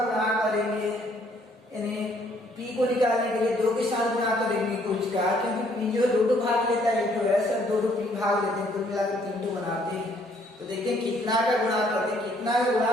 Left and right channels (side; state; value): both; normal; correlation 0.65